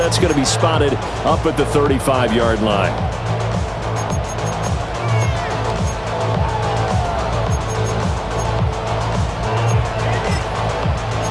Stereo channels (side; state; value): both; identical; correlation 1.00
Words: going to be spotted up at the 35-yard line.